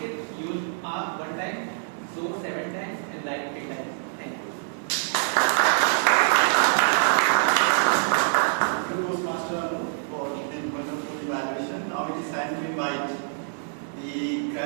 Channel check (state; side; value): silent; left; 61 dB below the other